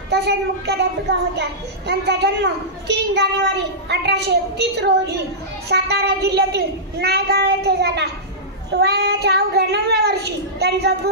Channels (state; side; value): normal; both; correlation -0.15